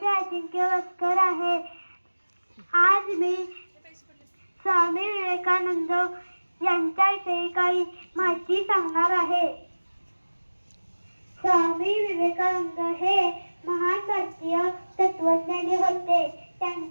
अजिंक्य वस्कर आहे. आज मी स्वामी विवेकानंद यांच्याविषयी काही माहिती सांगणार आहे. स्वामी विवेकानंद हे महान भारतीय तत्वज्ञानी होते.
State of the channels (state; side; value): inverted; both; correlation -1.00